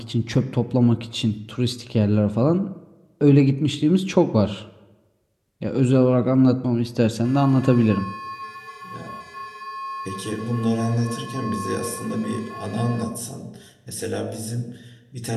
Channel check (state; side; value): identical; both; correlation 1.00